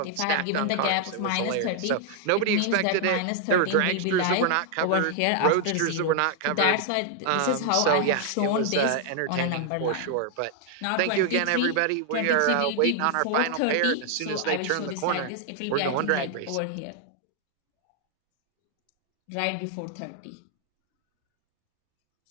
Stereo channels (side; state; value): both; different; correlation 0.00